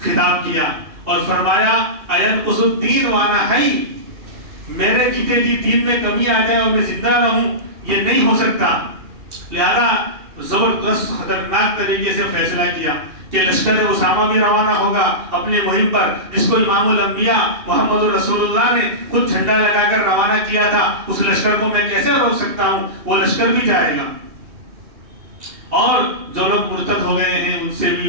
خطاب کیا اور فرمایا اَيَنْقُصُ الدِّينُ وَأَنَا حَيٌّ، میرے جیتے جی دین میں کمی آ جائے اور میں زندہ رہوں، یہ نہیں ہو سکتا۔ لہذا زبردست خطرناک طریقے سے فیصلہ کیا کہ لشکر اسامہ بھی روانہ ہوگا اپنی مہم پر، جس کو امام الانبیاء محمد رسول اللہ نے خود جھنڈا لگا کر روانہ کیا تھا، اس لشکر کو میں کیسے روک سکتا ہوں، وہ لشکر بھی جائے گا۔ اور جو لوگ مرتد ہو گئے ہیں ان سے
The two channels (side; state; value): left; late; 2.4 ms